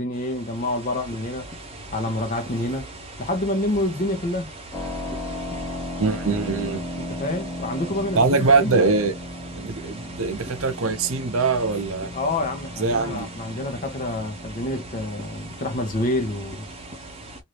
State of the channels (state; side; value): normal; both; correlation 0.00